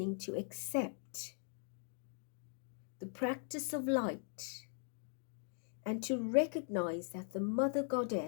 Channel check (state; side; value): silent; right; 51 dB below the other